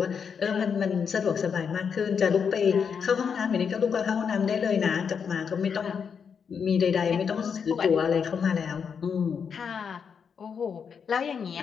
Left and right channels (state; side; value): quieter; right; 6.6 dB